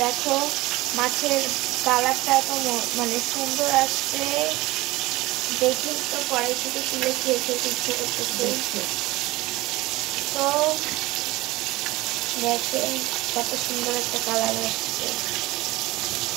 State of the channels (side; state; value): left; quieter; 19.7 dB